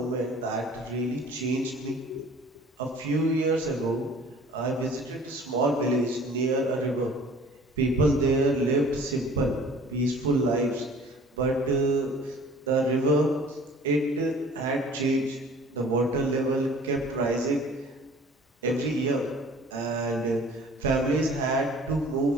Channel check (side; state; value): both; normal; correlation 0.49